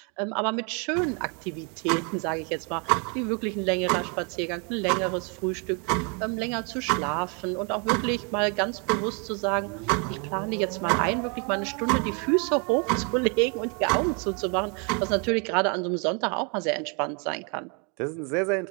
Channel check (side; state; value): left; quieter; 35.3 dB